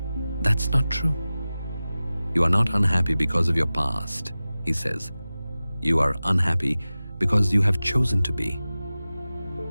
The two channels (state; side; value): inverted; both; correlation -0.96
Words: That's not true. You are not unhappy because of your past, he says. You are unhappy because you have chosen to be.